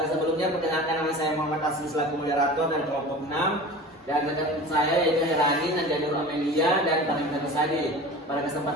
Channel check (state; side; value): normal; both; correlation 0.36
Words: perkenalkan, nama saya Muhammad Asli selaku moderator dari kelompok 6, dan rekan saya yaitu Herani, Nandianur Amelia, dan Farida Nusadi. Pada